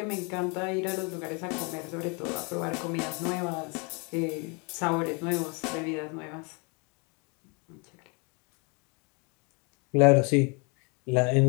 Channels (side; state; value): right; quieter; 33.0 dB